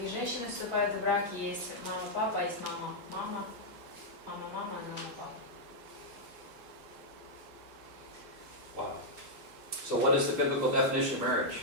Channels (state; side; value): late; left; 3.7 ms